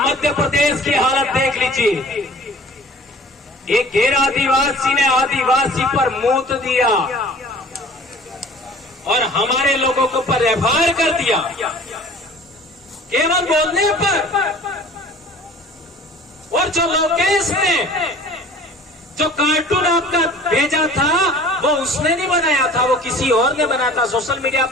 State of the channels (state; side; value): normal; both; correlation 0.46